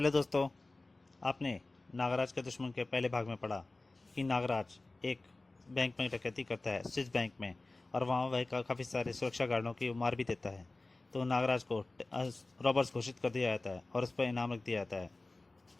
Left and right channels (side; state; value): right; quieter; 3.1 dB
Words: दोस्तों। आपने नागराज के दुश्मन के पहले भाग में पढ़ा कि नागराज एक बैंक में डकैती करता है, स्विस बैंक में, और वहाँ वह काफ़ी सारे सुरक्षा गार्डों की मार भी देता है। तो नागराज को रॉबर्स घोषित कर दिया जाता है और उस पर इनाम रख दिया जाता है।